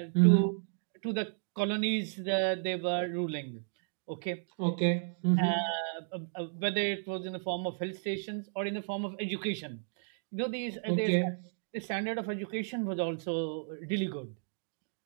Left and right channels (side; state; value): left; silent; digital silence